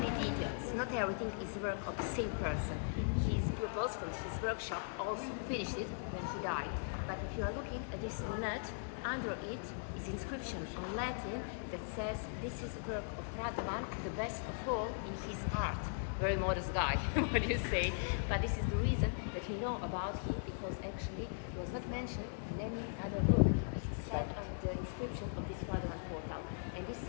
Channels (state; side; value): silent; right; digital silence